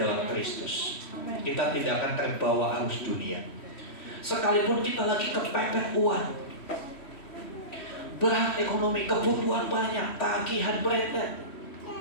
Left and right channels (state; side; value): late; right; 3.1 ms